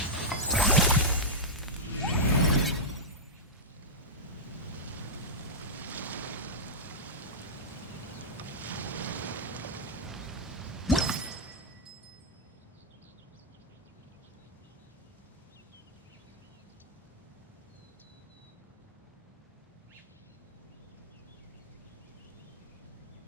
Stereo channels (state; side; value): normal; both; correlation -0.08